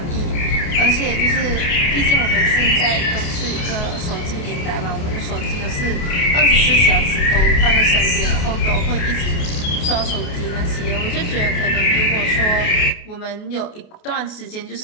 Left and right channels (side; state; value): right; late; 29 ms